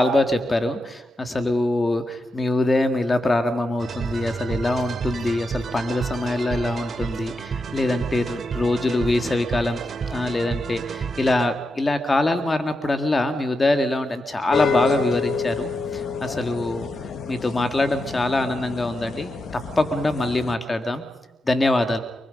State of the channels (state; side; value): normal; both; correlation 0.87